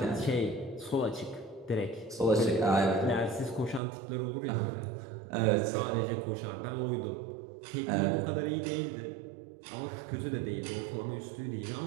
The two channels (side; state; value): left; drops out; at 3.8 s